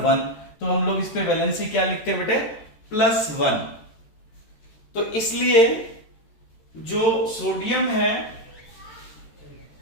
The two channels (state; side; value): late; right; 14 ms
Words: 1। तो हम लोग इस पे वैलेंसी क्या लिखते हैं बेटे? +1। तो इसलिए जो सोडियम